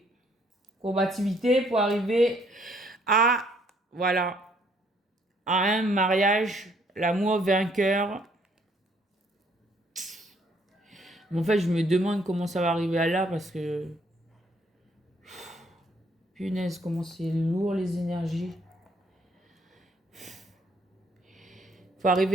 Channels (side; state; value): both; normal; correlation 0.66